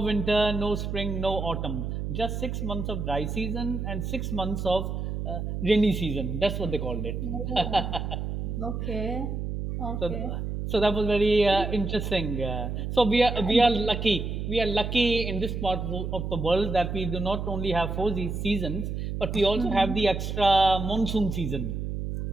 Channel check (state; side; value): noise; right; hum, 4 dB below the sound